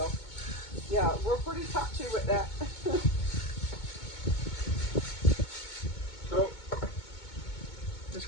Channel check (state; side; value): late; right; 2.2 ms